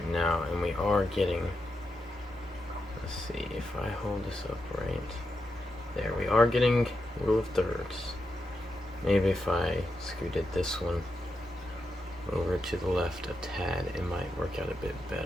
now, and we are getting, let's see if I hold this up right there, we are getting rule of thirds. Maybe if I scooted this one over to the left a tad, it might work work out a bit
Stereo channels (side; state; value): both; normal; correlation 0.86